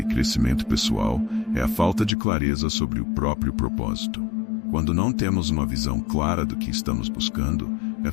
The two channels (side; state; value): right; drops out; at 2.1 s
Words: crescimento pessoal é a falta de clareza sobre o próprio propósito. Quando não temos uma visão clara do que estamos buscando, é